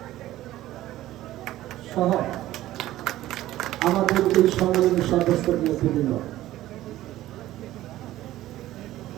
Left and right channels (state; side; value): quieter; left; 14.9 dB